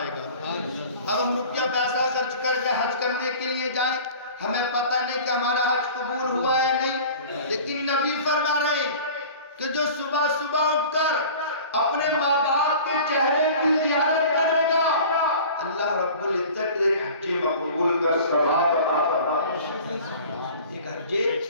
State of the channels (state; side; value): inverted; both; correlation -0.42